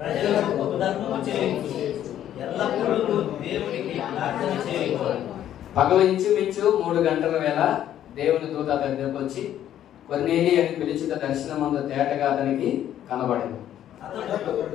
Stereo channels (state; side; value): quieter; right; 11.2 dB